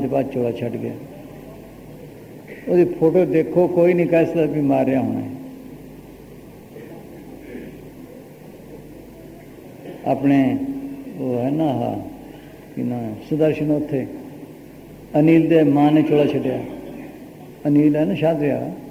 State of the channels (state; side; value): identical; both; correlation 1.00